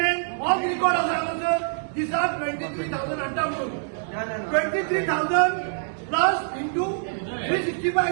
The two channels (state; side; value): silent; left; digital silence